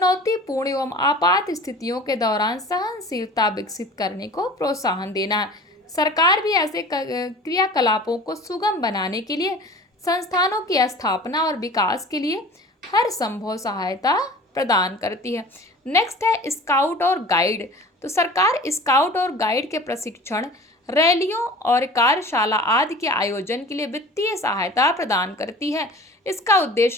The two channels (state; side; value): normal; both; correlation 0.42